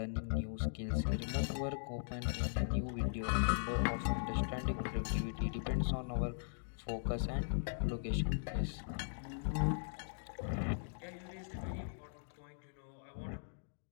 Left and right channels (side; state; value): right; silent; digital silence